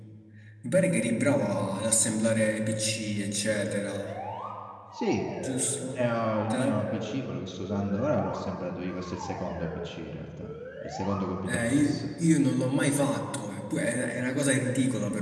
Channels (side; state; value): both; identical; correlation 1.00